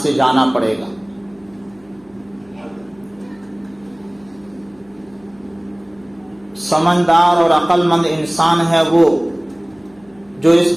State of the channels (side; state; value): left; noise; hum, 30 dB below the sound